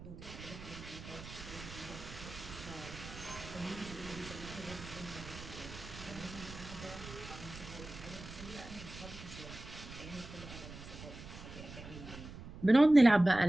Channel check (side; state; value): right; noise; rumble, 13 dB below the sound